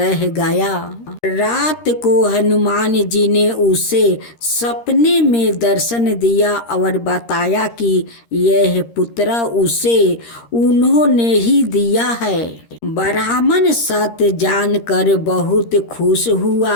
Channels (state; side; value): late; right; 13 ms